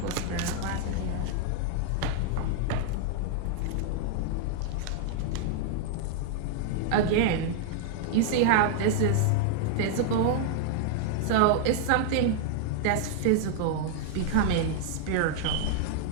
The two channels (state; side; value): different; both; correlation 0.00